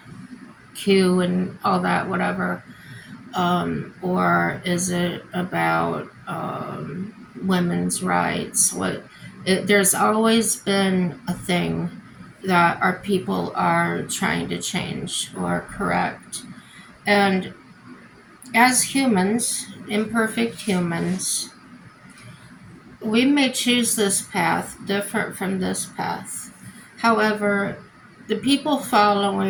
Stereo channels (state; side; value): identical; both; correlation 1.00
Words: and all that, whatever. Or is it about women's rights? There's always been a thing that our people are trying to change or correct. And as humans, imperfect humans, we may choose this path different from this path. However, the people